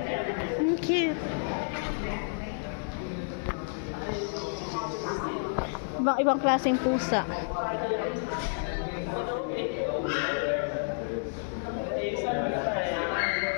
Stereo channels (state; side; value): silent; right; 58 dB below the other